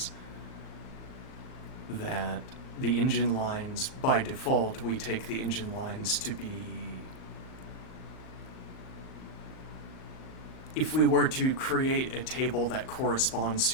That the engine lines, by default, we take the engine lines to be... If we were to create a table that corresponds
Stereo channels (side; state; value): right; late; 38 ms